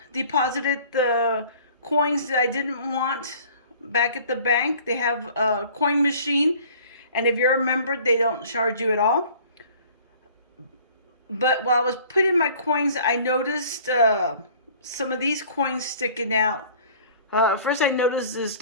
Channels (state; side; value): inverted; both; correlation -0.51